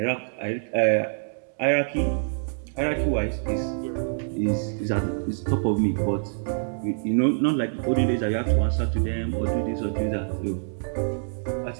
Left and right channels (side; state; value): left; silent; 61 dB below the other